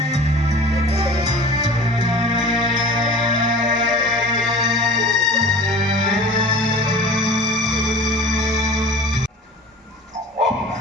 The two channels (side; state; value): both; normal; correlation 0.41